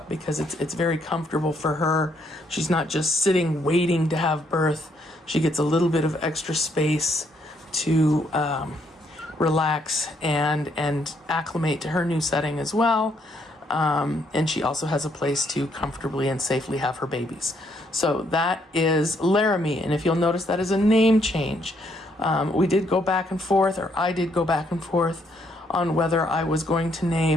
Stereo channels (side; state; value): both; normal; correlation 0.72